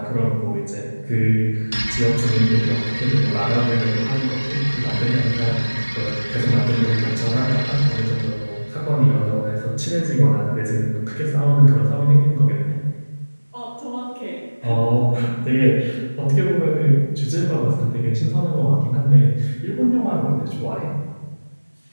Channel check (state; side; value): inverted; both; correlation -1.00